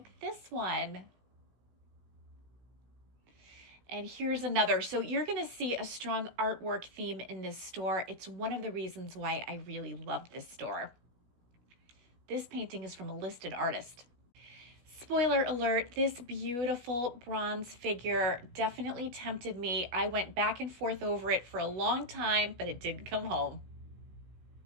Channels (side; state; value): left; late; 16 ms